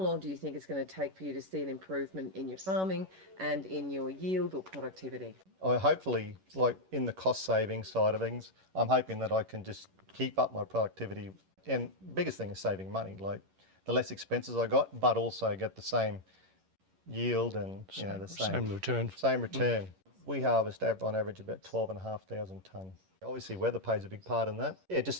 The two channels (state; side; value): late; left; 11 ms